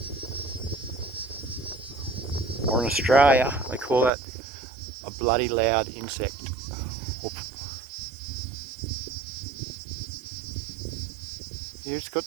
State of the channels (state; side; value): drops out; left; at 4.1 s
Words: Or in Australia, they call that a bloody loud insect. Here it's got